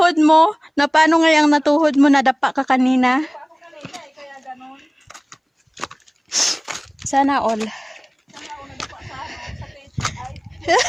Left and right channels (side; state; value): both; identical; correlation 1.00